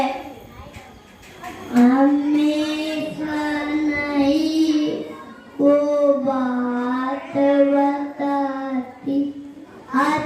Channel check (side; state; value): both; identical; correlation 1.00